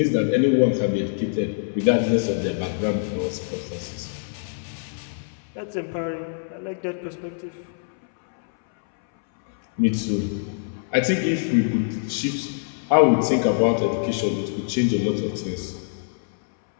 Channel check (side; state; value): right; silent; 62 dB below the other